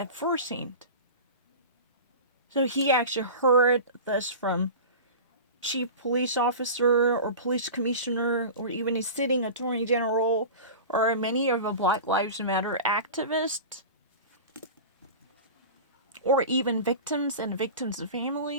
first hand. So he actually heard this from chief police officer or police commissioner or even a sitting attorney general or many of the Black Lives Matter activists or even victims and victims'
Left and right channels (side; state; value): both; inverted; correlation -0.33